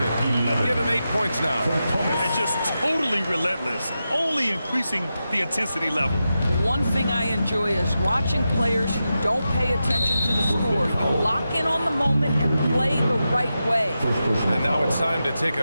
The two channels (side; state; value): both; inverted; correlation -0.90